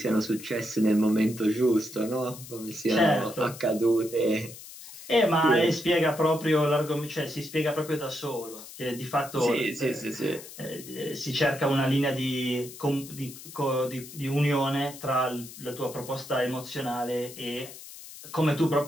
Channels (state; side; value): noise; left; hiss, 15 dB below the sound